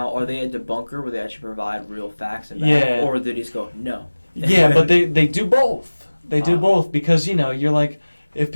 are they a debunker where they actually provide real facts and Yeah. or do they just go, no? Yeah, but they do both. They do both because, you're like, if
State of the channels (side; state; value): both; inverted; correlation -1.00